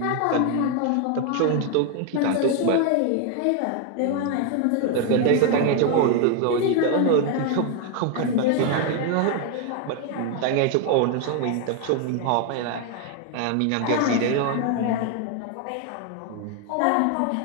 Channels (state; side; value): different; both; correlation 0.01